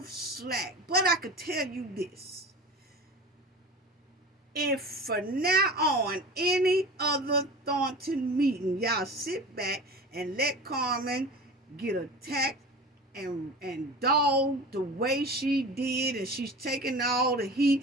slack. But I could tell you this. If from now on, any other Thornton meeting, y'all sit back and let Carmen get attacked and dogged the way she did, and she's taking all the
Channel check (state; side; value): normal; both; correlation 0.35